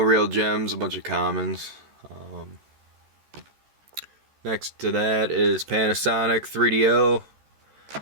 gems, a bunch of commons. Next to that is Panasonic 3DO.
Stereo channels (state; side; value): late; left; 14 ms